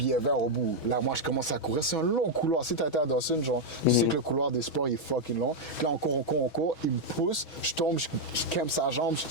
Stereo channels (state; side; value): late; right; 6.2 ms